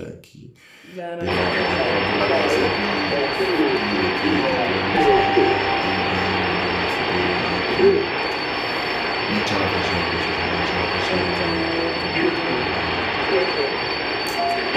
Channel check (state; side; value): identical; both; correlation 1.00